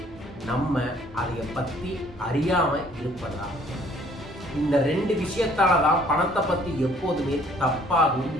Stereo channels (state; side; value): normal; both; correlation 0.59